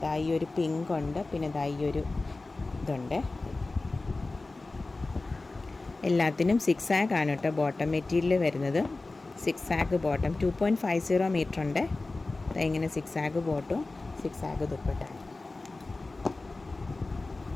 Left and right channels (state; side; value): quieter; right; 3.3 dB